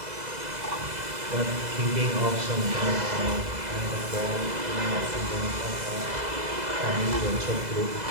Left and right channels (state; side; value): late; left; 2.0 ms